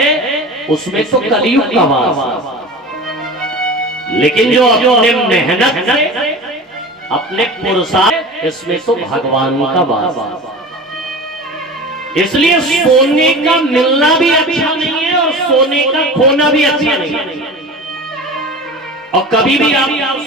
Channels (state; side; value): normal; both; correlation 0.34